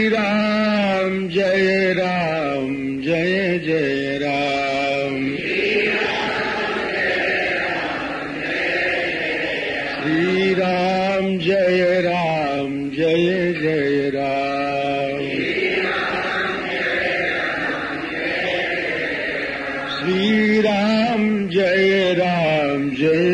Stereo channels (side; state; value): both; identical; correlation 1.00